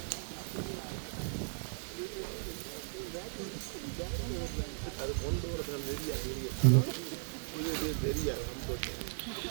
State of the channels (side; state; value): left; silent; 53 dB below the other